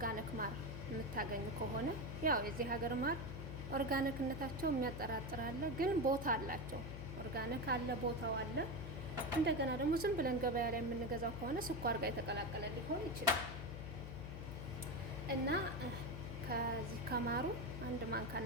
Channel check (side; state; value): left; noise; hum, 8 dB below the sound